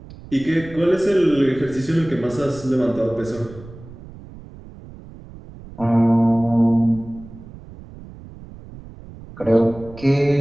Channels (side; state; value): right; noise; rumble, 18 dB below the sound